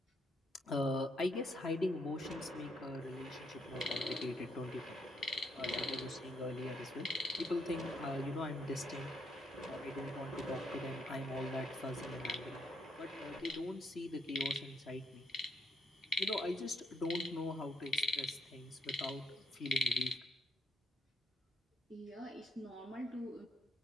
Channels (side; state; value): both; normal; correlation 0.74